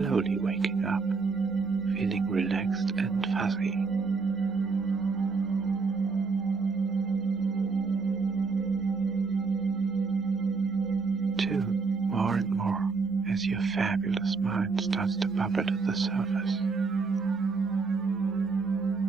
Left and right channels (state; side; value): quieter; left; 4.5 dB